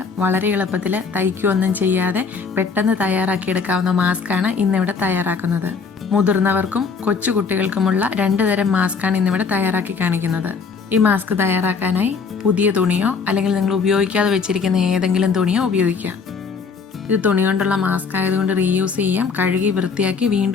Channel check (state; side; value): quieter; right; 5.3 dB